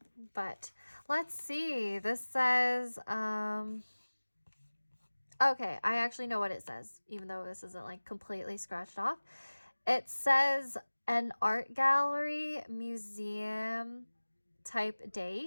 But let's see. This says, okay, I actually know what it says, even though this isn't like completely scratched off. It says an art gallery, museum type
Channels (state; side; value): inverted; both; correlation -1.00